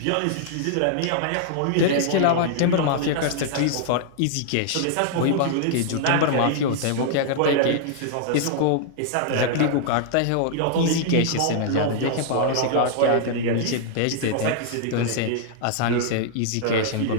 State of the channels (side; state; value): both; different; correlation -0.01